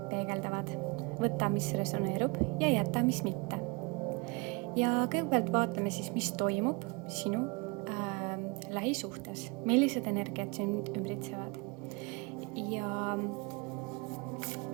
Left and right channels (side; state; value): left; quieter; 28.6 dB